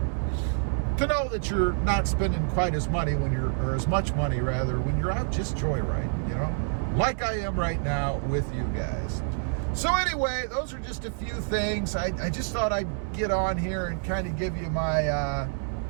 know that you're not spending quite as money or as much money rather, when you're out just joyriding, you know, like I am right now with you guys. So anyway, those are just a few things. I just thought I'd get on here and kind of give you my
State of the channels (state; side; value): silent; left; 60 dB below the other